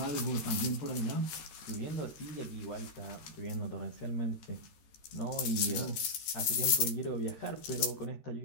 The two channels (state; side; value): late; right; 13 ms